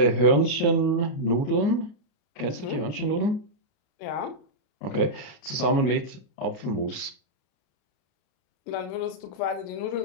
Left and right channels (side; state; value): right; late; 33 ms